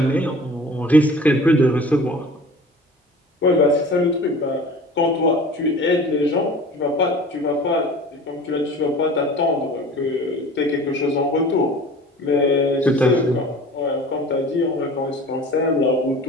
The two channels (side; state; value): both; normal; correlation 0.42